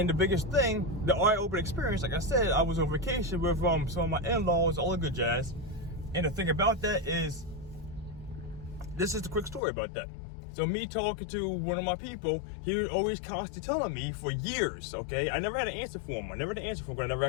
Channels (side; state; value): right; drops out; at 9.6 s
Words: the biggest thing, the eye-opening experience, like I said, I was on vacation with some of my in-laws, all the good jazz. And the thing about that is, this is the quick story about that. So me talking to one of my people, he was always constantly telling me for years, okay? I never had an answer for him. But I never